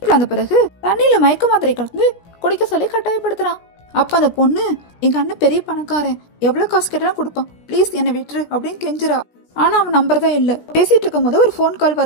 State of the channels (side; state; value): right; late; 17 ms